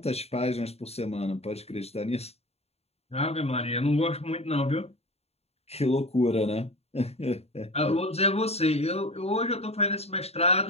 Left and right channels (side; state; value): right; late; 0.30 ms